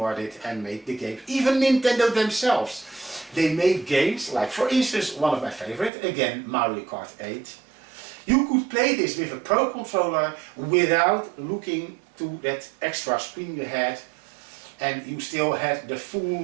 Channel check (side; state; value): left; drops out; at 5.9 s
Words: it and made the game. Even Nintendo themselves, they made games like, for instance, one of my favorite, again, Mario Kart 8. You could play this with a Pro controller without looking to that extra screen you had, and you still had the